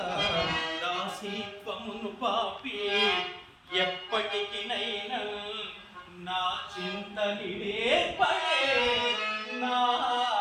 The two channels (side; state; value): both; identical; correlation 1.00